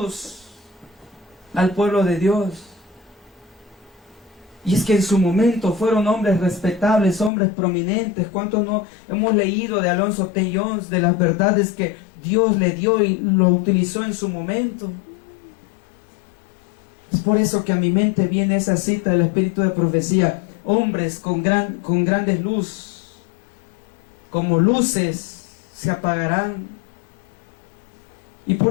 al pueblo de Dios. Y es que en su momento fueron hombres respetables, hombres prominentes. ¿Cuántos no hemos leído de Alonzo T. Jones, de las verdades que Dios le dio y lo utilizó en su momento? Es por eso que a mi mente viene esa cita del Espíritu de Profecía. Hombres con grandes luz, como luces, se apagarán. Y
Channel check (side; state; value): right; drops out; at 7.3 s